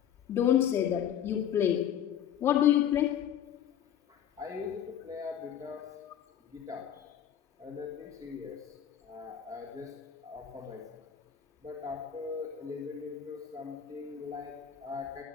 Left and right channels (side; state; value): right; quieter; 9.8 dB